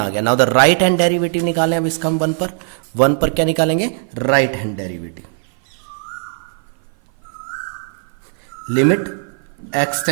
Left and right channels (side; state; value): left; silent; 56 dB below the other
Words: गया. Now the right hand derivative निकालें अब इसका हम 1 पर क्या निकालेंगे, right hand derivative. Limit x